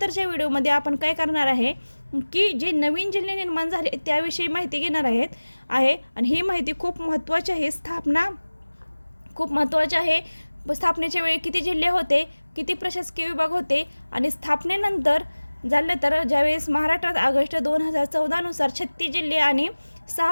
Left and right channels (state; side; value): inverted; both; correlation -1.00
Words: व्हिडिओमध्ये आपण काय करणार आहे की जे नवीन जिल्हे निर्माण झाले त्याविषयी माहिती घेणार आहे आणि ही माहिती खूप महत्त्वाची आहे। स्थापना खूप महत्त्वाची आहे। स्थापनेच्या वेळी किती जिल्हे होते, किती प्रशासकीय विभाग होते आणि स्थापनेनंतर झालं तर ज्यावेळेस महाराष्ट्रात ऑगस्ट 2014 नुसार 36 जिल्हे आणि